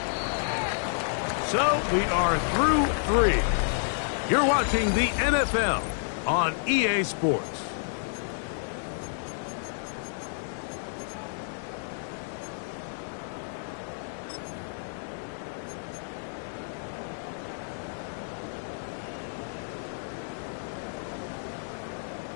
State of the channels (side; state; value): right; silent; digital silence